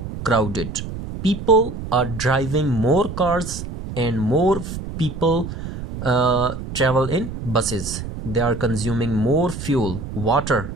crowded. People are driving more cars and more people travel in buses. They are consuming more fuel, water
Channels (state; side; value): noise; right; rumble, 8 dB below the sound